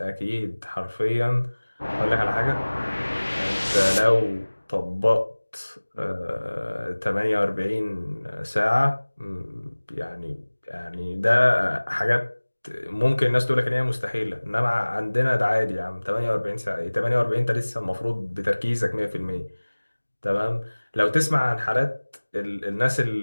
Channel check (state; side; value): inverted; both; correlation -1.00